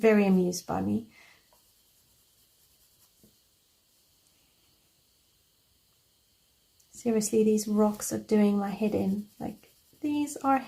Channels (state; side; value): identical; both; correlation 1.00